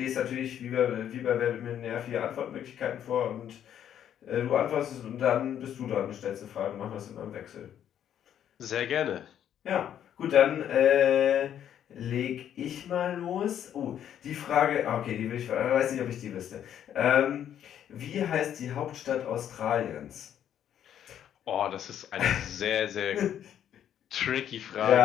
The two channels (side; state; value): right; quieter; 9.9 dB